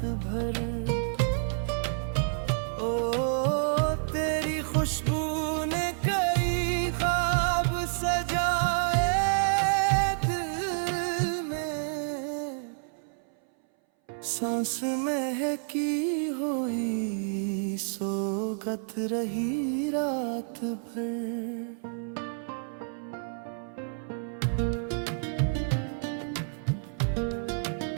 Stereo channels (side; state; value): left; silent; 58 dB below the other